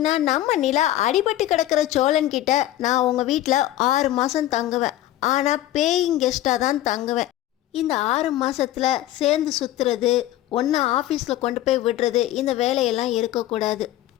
நம்ம நிலா அடிபட்டு கிடக்கிற சோழன்கிட்ட நான் உங்கள் வீட்டில் 6 மாதம் தங்குவேன், ஆனால் பேயிங் கெஸ்ட்டாக தான் தங்குவேன். இந்த 6 மாதத்தில் சேர்ந்து சுற்றுறது, ஒன்றா ஆஃபீஸில் கொண்டு போய் விடுறது, இந்த வேலையெல்லாம் இருக்கக்கூடாது.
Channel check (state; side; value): quieter; right; 14.1 dB